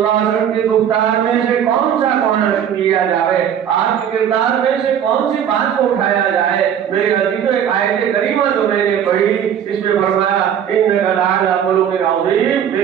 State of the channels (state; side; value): quieter; left; 9.0 dB